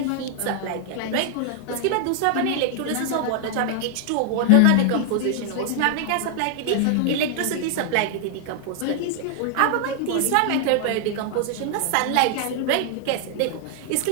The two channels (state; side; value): different; both; correlation 0.00